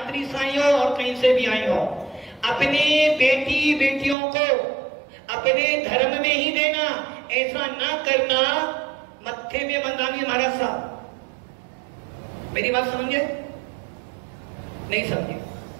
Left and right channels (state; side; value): drops out; left; at 4.2 s